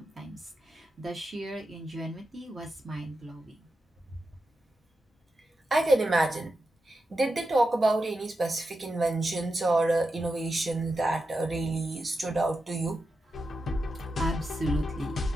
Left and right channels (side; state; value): both; normal; correlation 0.89